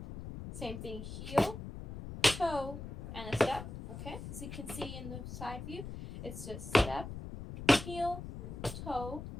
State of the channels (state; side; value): noise; left; rumble, 9 dB below the sound